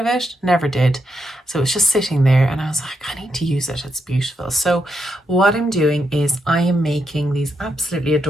it. Never did. So it's just sitting there and I was like, I need to use it. It's beautiful. So what I'm doing is I am making these absolutely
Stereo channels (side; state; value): both; normal; correlation 0.82